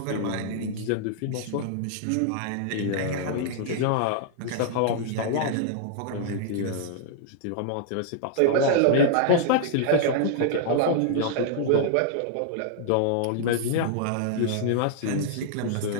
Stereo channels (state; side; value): different; both; correlation -0.01